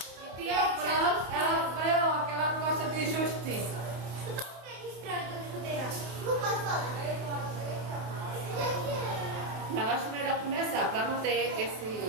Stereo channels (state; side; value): late; left; 29 ms